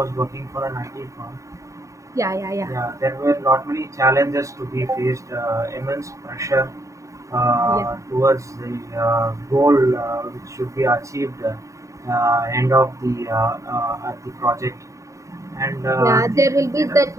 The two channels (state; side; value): late; left; 0.15 ms